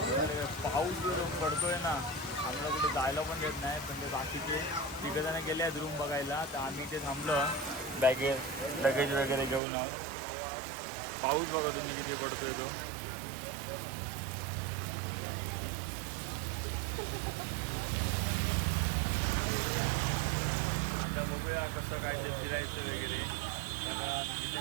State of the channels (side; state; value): left; drops out; at 9.6 s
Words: पाऊस जो पडतोय ना, आम्हाला कुठे जायला पण देत नाही. पण ते बाकीचे तिघजण गेले आहेत रूम बघायला, तर आम्ही ते थांबलो लगेज वगैरे घेऊन आहोत. पाऊस बघा तुम्ही किती पडतोय तो. आता बघूया कसं काय ते फिरायचं वगैरे. कारण इथे